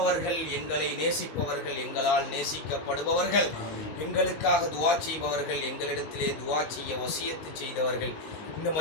எங்களை நேசிப்பவர்கள், எங்களால் நேசிக்கப்படுபவர்கள், எங்களுக்காக துவா செய்பவர்கள், எங்களிடத்திலே துவா செய்ய வசியத்து செய்தவர்கள், இந்த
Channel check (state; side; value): late; right; 19 ms